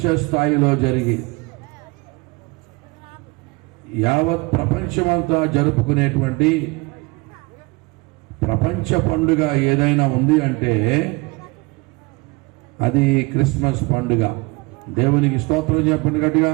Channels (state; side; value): quieter; left; 25.4 dB